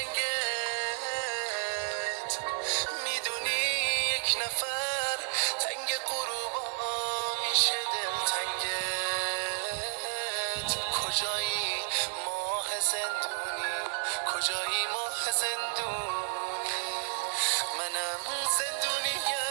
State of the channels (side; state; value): left; silent; 56 dB below the other